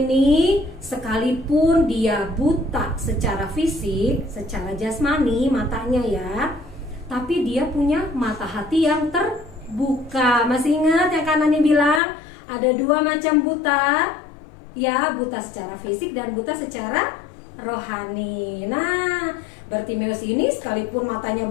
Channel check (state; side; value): drops out; right; at 12.0 s